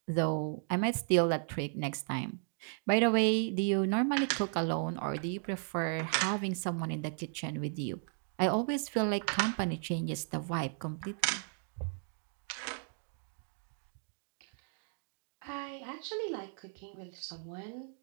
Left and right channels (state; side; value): silent; left; 54 dB below the other